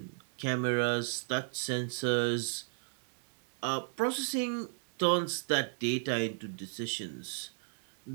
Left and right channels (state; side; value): silent; left; 55 dB below the other